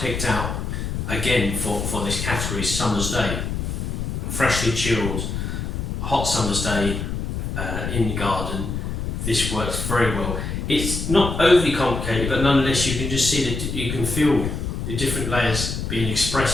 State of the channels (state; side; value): noise; left; rumble, 3 dB below the sound